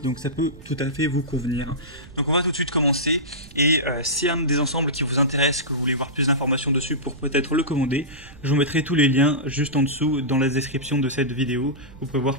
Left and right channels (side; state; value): right; noise; rumble, 20 dB below the sound